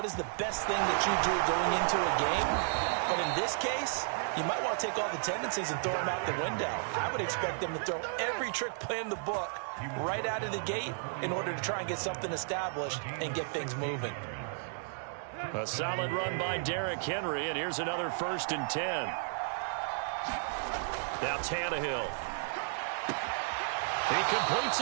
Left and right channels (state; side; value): silent; left; digital silence